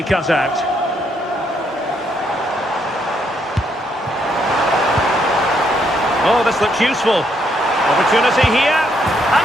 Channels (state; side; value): normal; both; correlation 0.74